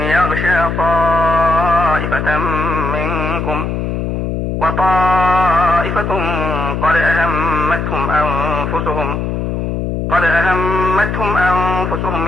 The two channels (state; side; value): noise; left; hum, 2 dB below the sound